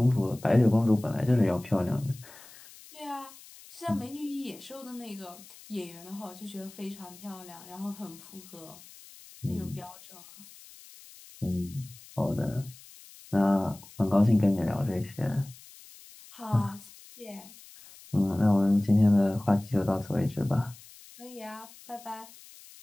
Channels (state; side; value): noise; left; hiss, 20 dB below the sound